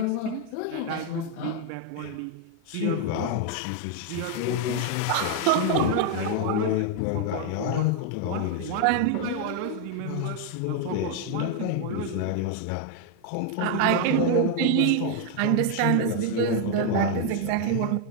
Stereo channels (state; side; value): different; both; correlation 0.01